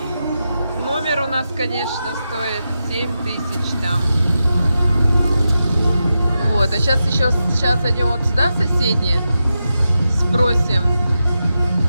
Номер у нас, конечно, стоит 7000 там. Вот, а сейчас зайдем вот сюда, соседние, спросим.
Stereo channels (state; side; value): inverted; both; correlation -0.89